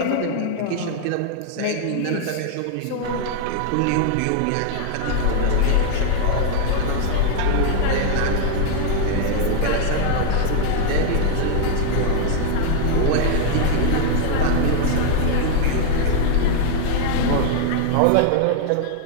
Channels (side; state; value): both; different; correlation 0.00